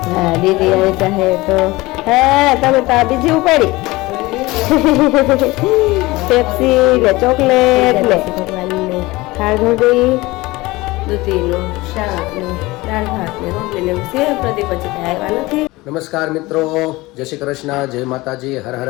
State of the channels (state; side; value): quieter; right; 20.8 dB